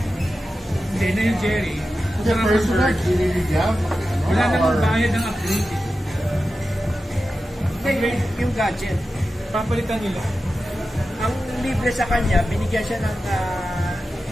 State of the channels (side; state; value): both; normal; correlation 0.92